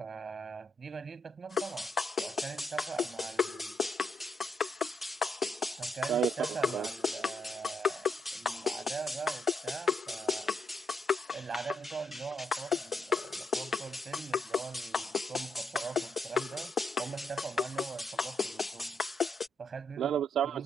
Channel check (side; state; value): both; normal; correlation 0.79